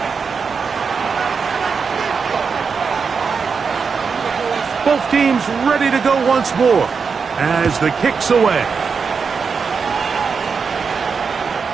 Both teams ready to go once more as the kick's away.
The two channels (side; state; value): left; quieter; 5.6 dB